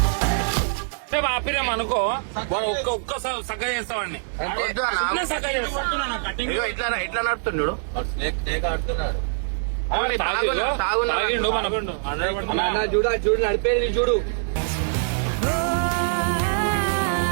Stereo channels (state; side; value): silent; left; digital silence